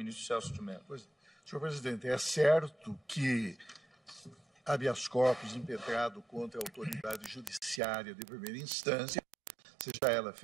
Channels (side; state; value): left; drops out; at 7.8 s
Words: Celso de Mello. Senhor presidente, é certo que habeas corpus impetrado contra a autoridade judiciária de primeira instância, seja ela